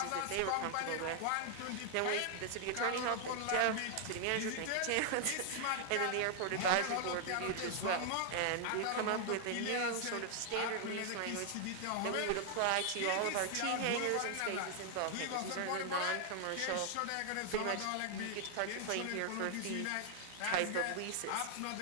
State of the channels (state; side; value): different; both; correlation 0.00